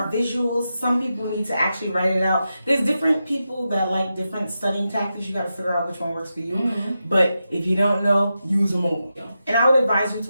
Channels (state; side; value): inverted; both; correlation -0.89